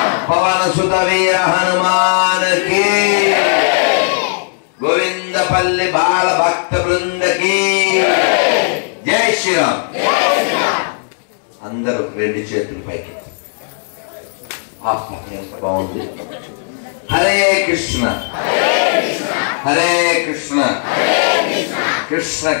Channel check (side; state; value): right; silent; digital silence